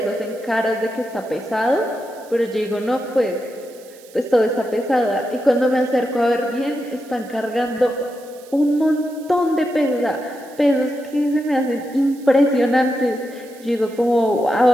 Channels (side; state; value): right; noise; hiss, 24 dB below the sound